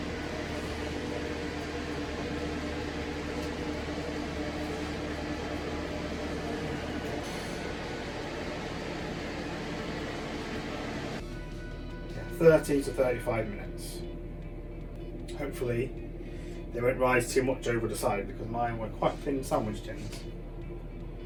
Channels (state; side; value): identical; both; correlation 1.00